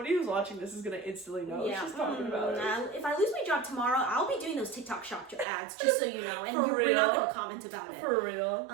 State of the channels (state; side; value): drops out; left; at 5.5 s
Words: who's watching this is gonna instantly know what she's talking about. If I lose my job tomorrow, I'll be doing those TikTok shop ads, just so you know, and For we're not real? gonna comment about it. For real.